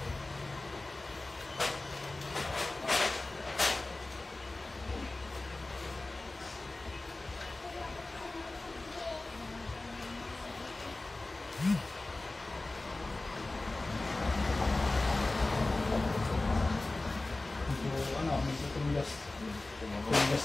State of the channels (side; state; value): right; quieter; 3.0 dB